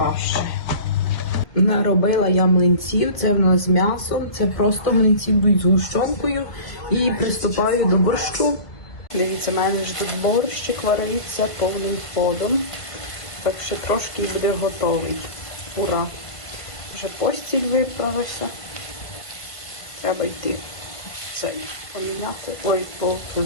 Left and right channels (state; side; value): late; right; 1.8 ms